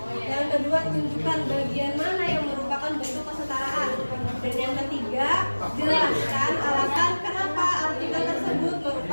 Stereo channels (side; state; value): both; inverted; correlation -1.00